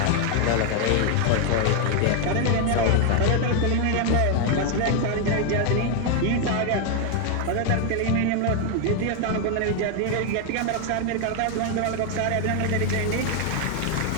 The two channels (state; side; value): different; both; correlation 0.01